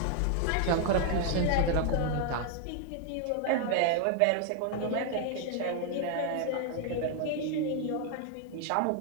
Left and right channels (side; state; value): both; different; correlation 0.00